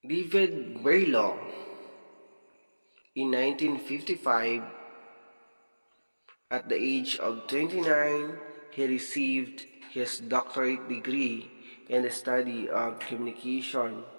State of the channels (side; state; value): both; inverted; correlation -1.00